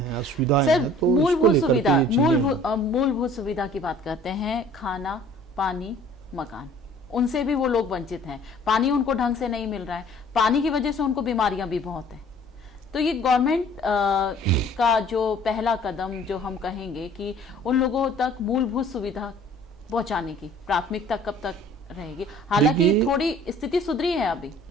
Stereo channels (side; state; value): both; normal; correlation 0.52